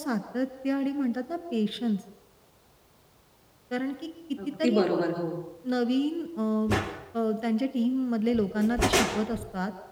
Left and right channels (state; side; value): identical; both; correlation 1.00